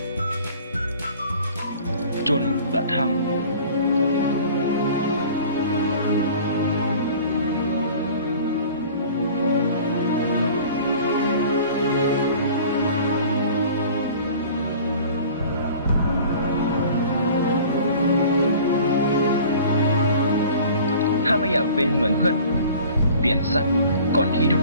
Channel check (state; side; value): inverted; both; correlation -0.46